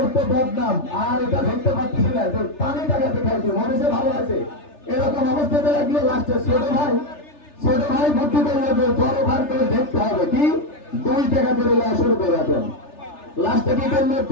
তো বদনাম, আর এটা ধরতে পারতেছি না, তো পানি টাকাতে খাইছে, মনে ভালো আছে। এরকম অবস্থাতে লাগলো। লাস্টে ছোট ভাই বুদ্ধি করলো যে বড় ভাই করে দেখতে হবে কি 2 টাকা করে শুরু করে দেন। লাস্টে কি করলো,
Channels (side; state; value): right; late; 3.3 ms